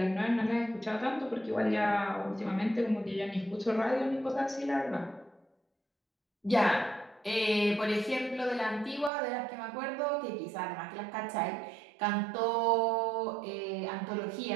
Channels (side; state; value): left; drops out; at 9.1 s